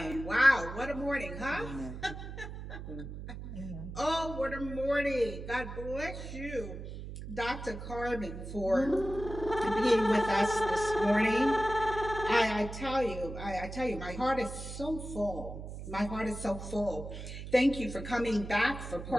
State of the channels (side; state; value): right; noise; hum, 9 dB below the sound